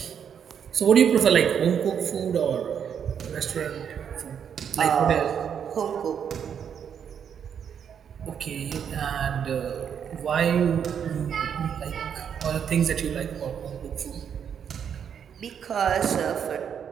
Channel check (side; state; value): left; quieter; 8.0 dB